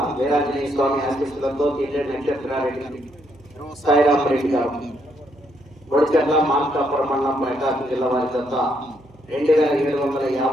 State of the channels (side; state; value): right; noise; hum, 27 dB below the sound